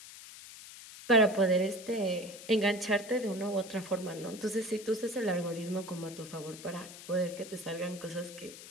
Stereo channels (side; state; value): left; noise; hiss, 15 dB below the sound